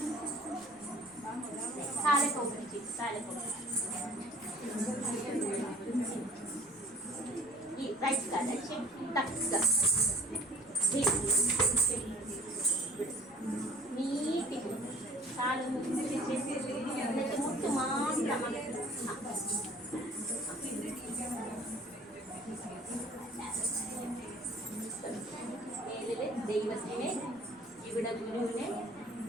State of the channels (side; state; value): left; noise; rumble, 30 dB below the sound